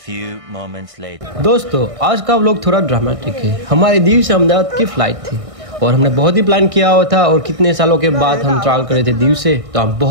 moments later. दोस्तों आज का व्लॉग थोड़ा ड्रामेटिक है। हमारी दीव से अहमदाबाद की फ्लाइट थी और हमने बहुत ही प्लान किया हुआ था और कितने सालों के बाद हम ट्रैवल करे थे दीव से, तो हम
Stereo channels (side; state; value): left; late; 1.6 ms